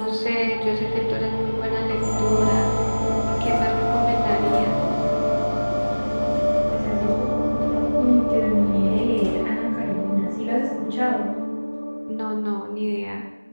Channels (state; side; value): inverted; both; correlation -1.00